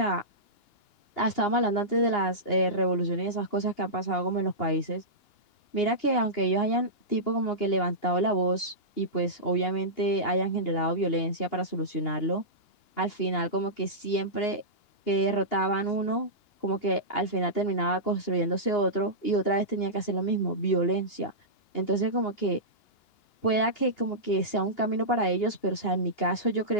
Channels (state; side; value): late; right; 2.8 ms